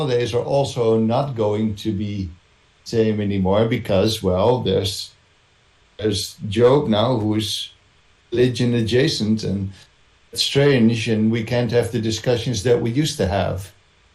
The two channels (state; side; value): identical; both; correlation 1.00